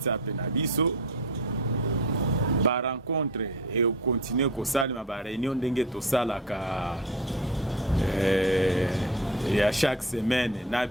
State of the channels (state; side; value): normal; both; correlation 0.31